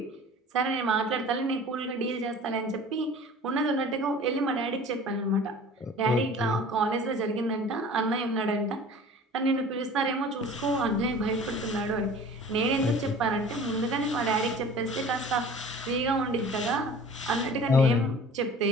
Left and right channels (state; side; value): normal; both; correlation 0.44